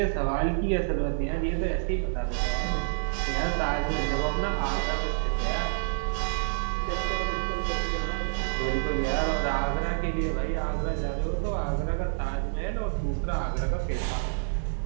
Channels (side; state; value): left; silent; 59 dB below the other